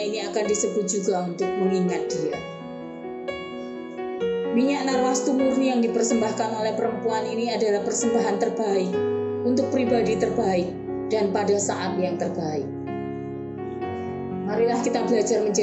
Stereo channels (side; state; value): both; identical; correlation 1.00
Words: ini akan disebut juga untuk mengingat dia. Minyak narwastu murni yang dipersembahkan oleh perempuan ini adalah persembahan terbaik untuk pribadi terbaik dan pada saat yang terbaik. Marilah kita belajar